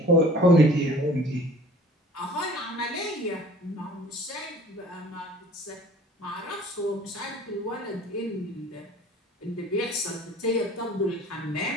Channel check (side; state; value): both; normal; correlation 0.47